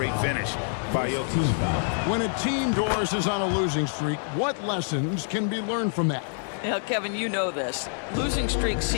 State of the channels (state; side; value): silent; right; digital silence